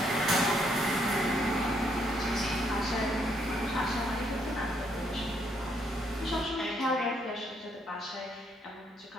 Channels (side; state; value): both; normal; correlation 0.72